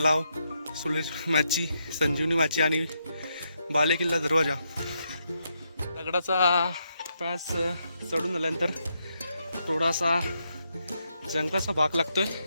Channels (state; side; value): inverted; both; correlation -0.80